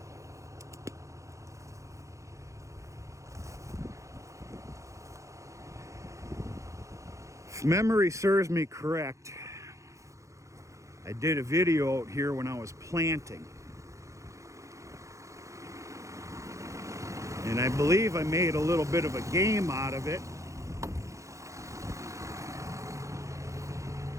If memory serves me correct, I did a video out here when I was planting. And I believe I made a little bit of a game out of it.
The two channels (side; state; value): left; late; 0.15 ms